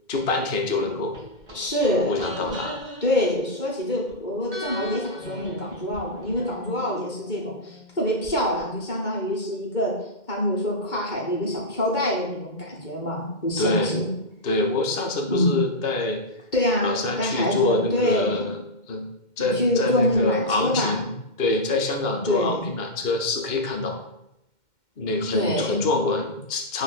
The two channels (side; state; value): right; late; 2.1 ms